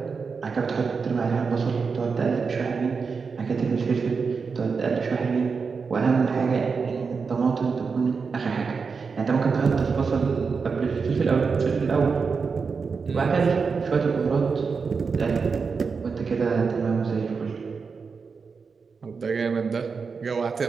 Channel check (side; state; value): left; quieter; 5.2 dB